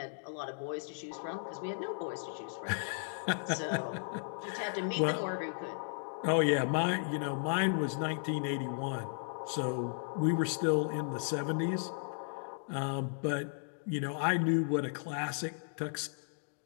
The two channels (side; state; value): right; silent; digital silence